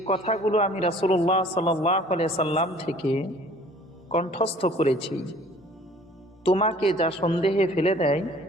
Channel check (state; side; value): normal; both; correlation 0.52